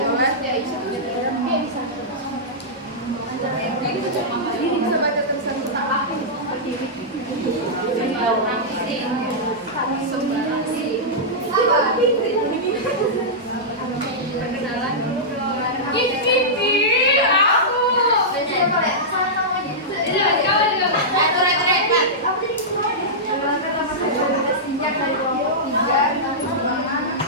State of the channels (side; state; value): both; normal; correlation -0.12